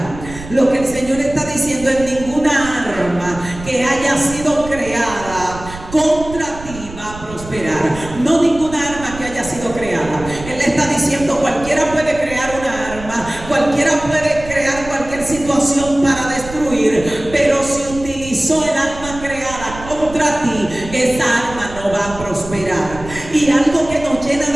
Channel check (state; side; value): noise; right; rumble, 13 dB below the sound